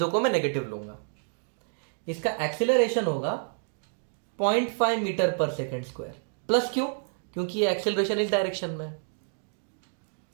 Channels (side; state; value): left; silent; digital silence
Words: को मैं नेगेटिव लूंगा। इसका एक्सेलरेशन होगा 0.5 metre per second square. Plus क्यों? क्योंकि ये एक्सेलरेशन इस डायरेक्शन में।